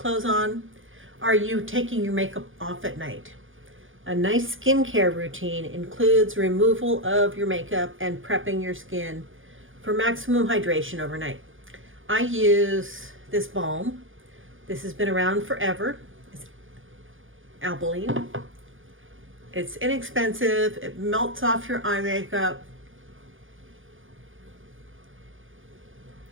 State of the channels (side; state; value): left; late; 0.58 ms